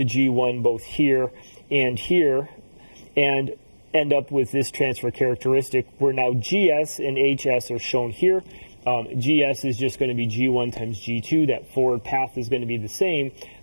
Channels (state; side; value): inverted; both; correlation -1.00